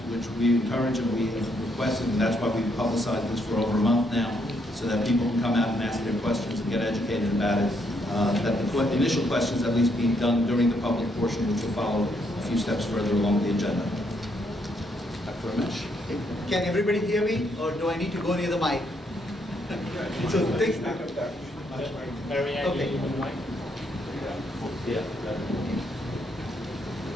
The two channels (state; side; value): normal; both; correlation 0.74